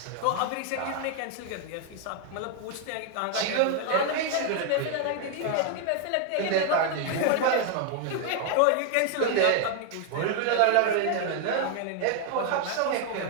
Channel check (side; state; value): both; different; correlation 0.00